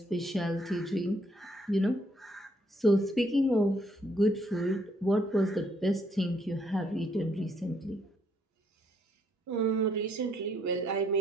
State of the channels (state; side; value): normal; both; correlation 0.70